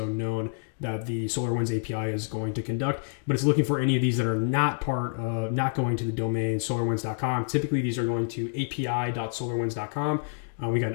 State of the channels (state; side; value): silent; right; digital silence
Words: known that the SolarWinds API is going to conduct, but it's looking for any of these that are not not going to the domain solarwinds.com. Typically, these are going to api.solarwinds.com. We got an